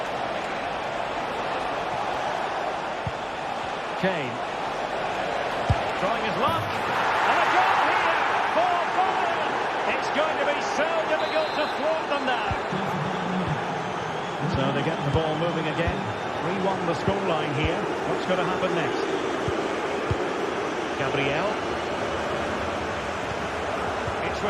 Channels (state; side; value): identical; both; correlation 1.00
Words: Kane. Trying his luck. And a goal here for Bayern. It's going to be so difficult to thwart them now. So they get the ball moving again. 3-1 the scoreline here. What's going to happen next? Gabriel. It's